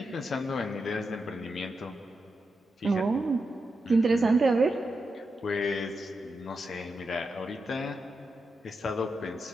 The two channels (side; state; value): both; normal; correlation 0.87